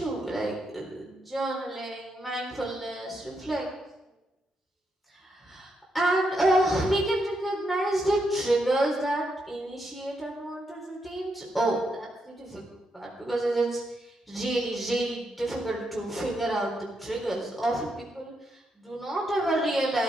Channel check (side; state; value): both; normal; correlation 0.81